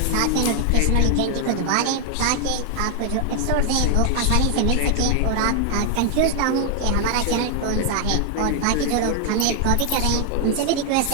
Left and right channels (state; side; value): different; both; correlation 0.00